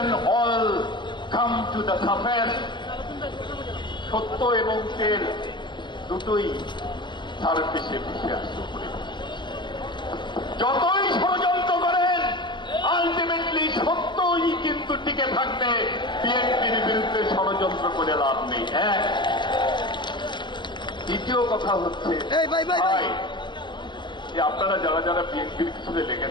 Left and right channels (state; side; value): late; right; 0.22 ms